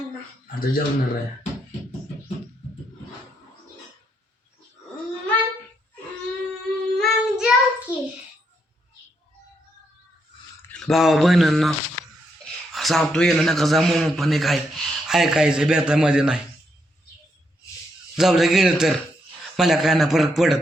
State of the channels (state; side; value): normal; both; correlation 0.77